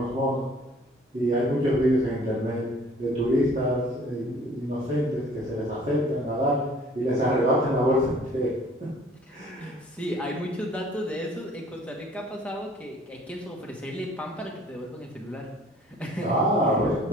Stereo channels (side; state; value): both; normal; correlation 0.54